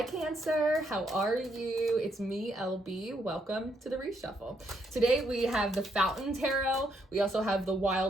Cancer, how are you? It's me, LB. Welcome to the Reshuffle. Today we have the Fountain Tarot. We also have the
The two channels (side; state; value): both; normal; correlation 0.75